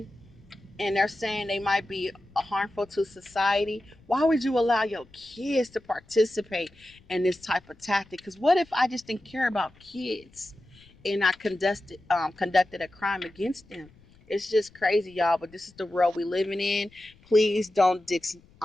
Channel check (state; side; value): noise; left; rumble, 27 dB below the sound